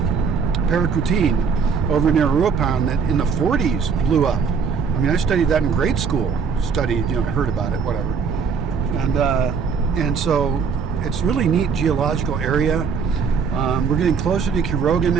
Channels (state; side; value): quieter; left; 5.8 dB